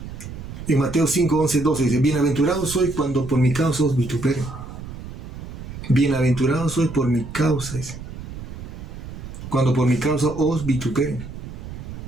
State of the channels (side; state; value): right; noise; rumble, 11 dB below the sound